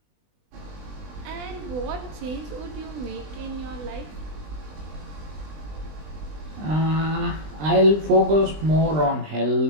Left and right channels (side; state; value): left; late; 20 ms